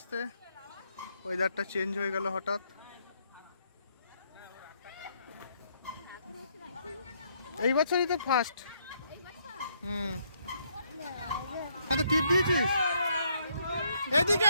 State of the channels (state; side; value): inverted; both; correlation -0.72